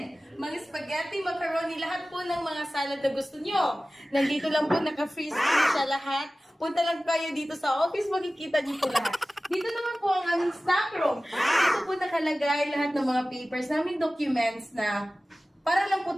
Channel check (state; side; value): normal; both; correlation 0.97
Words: Mga spaghetti, macaroni, lahat po ng mga salad na gusto nyo. Nandito lang po, naka-freeze po siya lahat. Punta lang kayo dito sa office, makikita niyo po lahat. Dito naman po ang aming stock room. Dito po nakalagay lahat ng mga papers namin, documents na para lang po